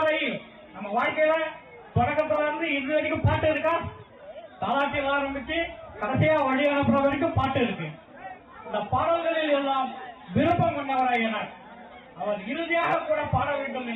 நம்ம வாழ்க்கையில தொடக்கத்துல இருந்து இறுதி வரைக்கும் பாட்டு இருக்கா, தாலாட்டில் ஆரம்பிச்சு கடைசியா வழி அனுப்புற வரைக்கும் பாட்டு இருக்கு. இந்த பாடல்களில் எல்லாம் விருப்பம் கொண்டவர் ஐயனார். அவர் இறுதியாக கூட பாட வேண்டும்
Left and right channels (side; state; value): both; identical; correlation 1.00